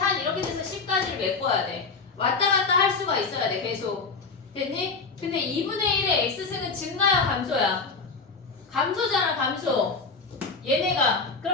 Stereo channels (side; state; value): right; quieter; 4.5 dB